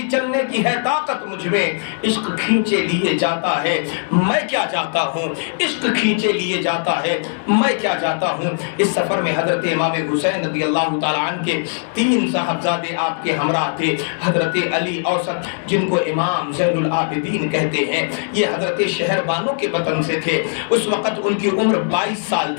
چلنے کی ہے طاقت مجھ میں، عشق کھینچے لیے جاتا ہے میں کیا جاتا ہوں، عشق کھینچے لیے جاتا ہے میں کیا جاتا ہوں۔ اس سفر میں حضرت امام حسین رضی اللہ تعالیٰ عنہ کے 3 صاحبزادے آپ کے ہمراہ تھے۔ حضرت علی اوسط جن کو امام زین العابدین کہتے ہیں، یہ حضرت شہر بانو کے وطن سے تھے، اس وقت ان کی عمر 22 سال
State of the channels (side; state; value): right; silent; 66 dB below the other